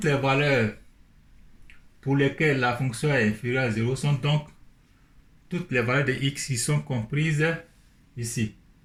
les valeurs pour lesquelles la fonction est inférieure à 0 sont donc toutes les valeurs de x qui sont comprises ici.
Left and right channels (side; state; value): both; identical; correlation 1.00